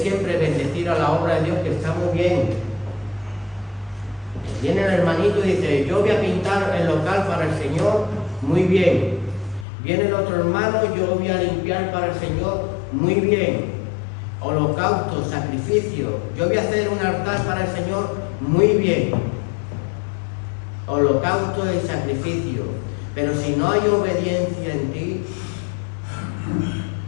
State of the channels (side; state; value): right; drops out; at 9.7 s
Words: bendecir a la obra de Dios, que está muy bien. Viene el hermanito y dice: yo voy a pintar el local para el Señor, muy bien. Viene el otro hermano: yo voy a limpiar para el Señor, muy bien. Holocausto, sacrificio, yo voy a hacer un altar para el Señor, muy bien. Holocausto y sacrificio. Pero si no hay obediencia en ti,